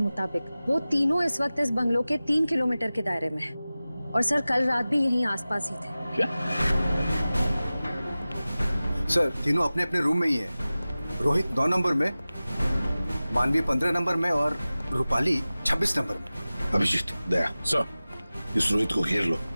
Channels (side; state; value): both; inverted; correlation -0.97